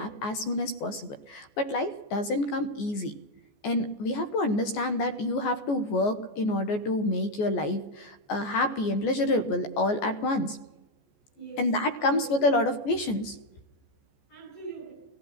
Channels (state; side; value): late; right; 14 ms